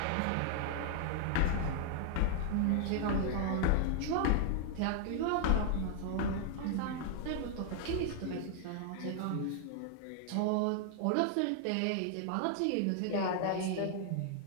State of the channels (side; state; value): both; different; correlation 0.00